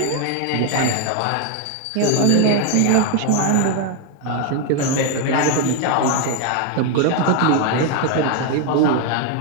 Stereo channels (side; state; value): both; different; correlation 0.01